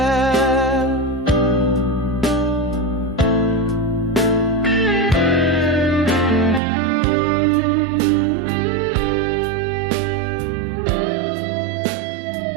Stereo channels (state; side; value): drops out; left; at 6.6 s